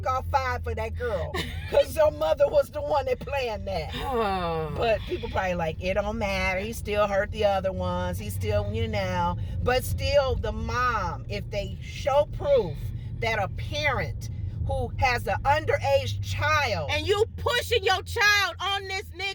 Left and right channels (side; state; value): both; identical; correlation 1.00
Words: 5 for that girl. Because your mother was the one that planned that. But people probably like, it don't matter. He still hurt the other ones. He still, But still, the mom, if they show proof that a parent who has an underage child. And you pushing your child on this